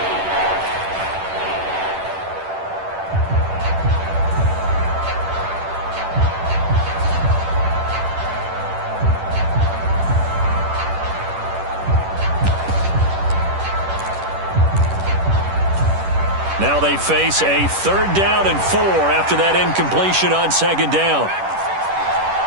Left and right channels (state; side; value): late; left; 10 ms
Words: Now they face a 3rd down and 4 after that incompletion on 2nd down.